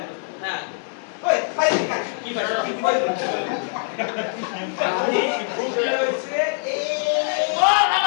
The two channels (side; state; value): right; silent; 63 dB below the other